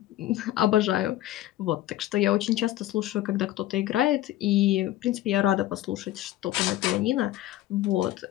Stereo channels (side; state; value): right; quieter; 14.3 dB